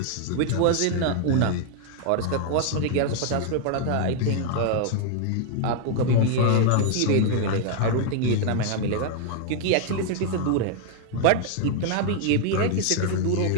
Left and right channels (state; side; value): different; both; correlation 0.00